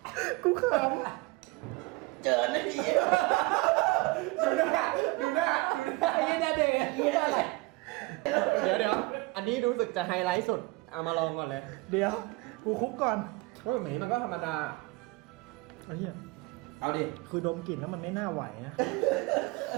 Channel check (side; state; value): left; quieter; 23.1 dB